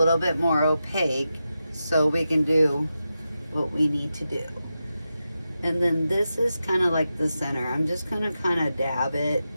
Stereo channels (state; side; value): inverted; both; correlation -0.90